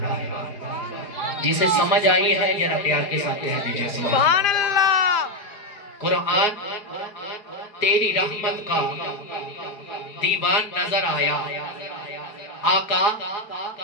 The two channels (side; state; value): right; late; 4.7 ms